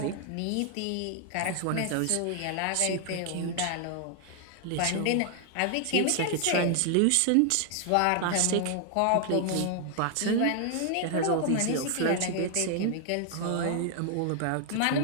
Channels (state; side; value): different; both; correlation 0.00